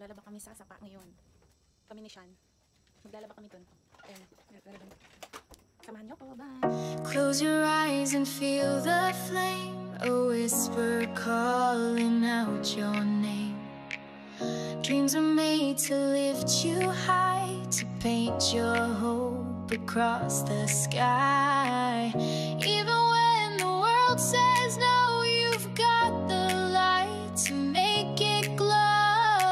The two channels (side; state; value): both; identical; correlation 1.00